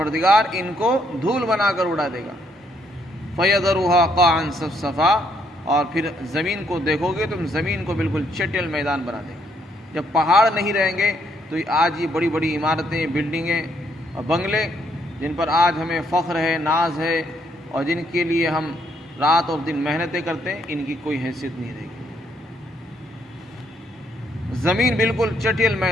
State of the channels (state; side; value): normal; both; correlation 0.71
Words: ان کو دھول بنا کر اڑا دے گا. فَيَذَرُهَا قَاعًا صَفْصَفًا، اور پھر زمین کو دیکھو گے تم، زمین کو بالکل چٹیل میدان بنا دے گا. جب پہاڑ نہیں رہیں گے تو آج یہ بڑی بڑی عمارتیں، بلڈنگیں اور بنگلے جن پر آج ہمیں فخر ہے، ناز ہے، اور جن کے لیے ہم رات اور دن محنتیں کرتے ہیں، ان کی کوئی حیثیت نہیں رہے گی. زمین بالکل چٹیل